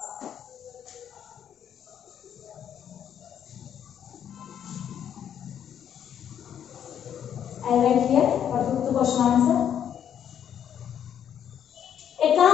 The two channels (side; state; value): right; quieter; 9.2 dB